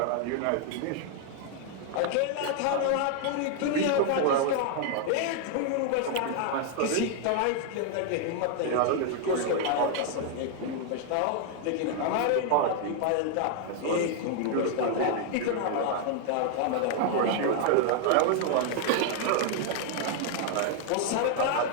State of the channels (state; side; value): different; both; correlation 0.00